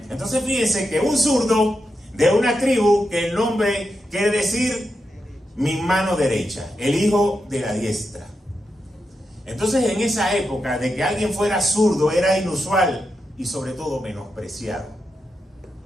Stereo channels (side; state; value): both; normal; correlation 0.86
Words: Entonces fíjense que un zurdo de una tribu, que el nombre quiere decir mi mano derecha, el hijo de la diestra. Entonces en esa época de que alguien fuera zurdo era inusual y sobre todo menospreciado.